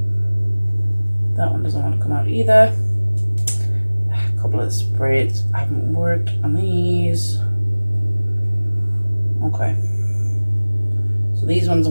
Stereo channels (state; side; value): inverted; both; correlation -1.00